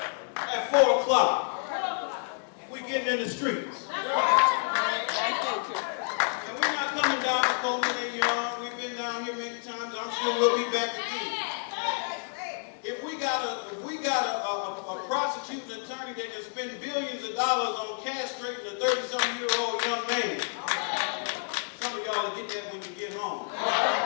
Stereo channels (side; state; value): right; silent; 58 dB below the other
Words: at 4 o'clock, we're getting in the streets. And we're not coming down to Coleman and Young. We've been down here many times. I'm sure we'll be back again. If we got a prosecuting attorney that can spend billions of dollars on castrating a 30-something-year-old young man, some of y'all will get that when you get home.